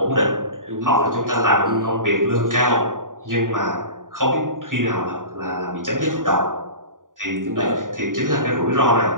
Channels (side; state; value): left; late; 0.89 ms